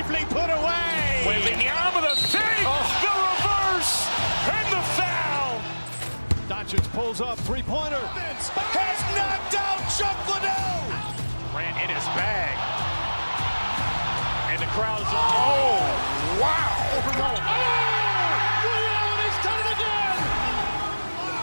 put away. Wembanyama the fake, the reverse, and the foul. Doncic pulls up, three-pointer. Has knocked out Chuck Liddell. Ran in his bag. And the crowd is wow. He's done it again.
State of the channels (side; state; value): both; inverted; correlation -1.00